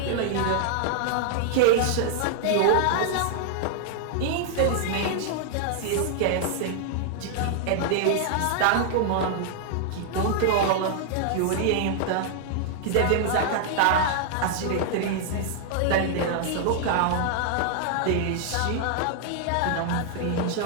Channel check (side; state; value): both; different; correlation -0.01